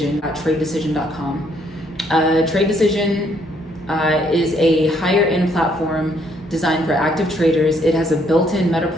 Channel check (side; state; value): both; normal; correlation 0.69